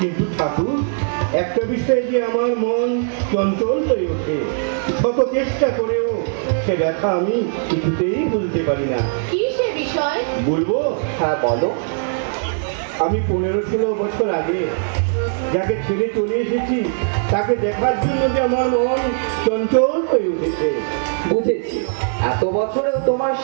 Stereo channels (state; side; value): silent; left; digital silence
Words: কিন্তু ঠাকুর, একটা বিষয়ে যে আমার মন চঞ্চল হয়ে ওঠে, শত চেষ্টা করেও সে ব্যথা আমি কিছুতেই বুঝতে পারি না। কি সে বিষয়? বলবো? হ্যাঁ বলো। আমি 15-16 বছর আগে যাকে ছেড়ে চলে এসেছি তাকে দেখার জন্য যে আমার মন চঞ্চল হয়ে উঠেছে। বুঝেছি, এত বছরেও তোমার